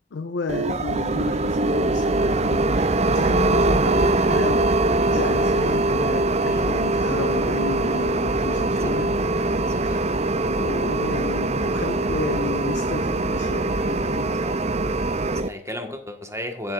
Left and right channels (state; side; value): normal; both; correlation 0.34